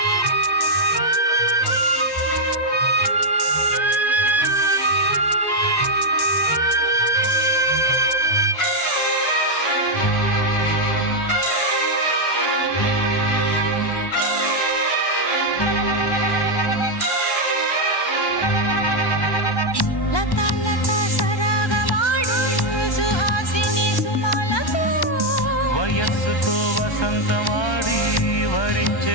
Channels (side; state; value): right; late; 1.1 ms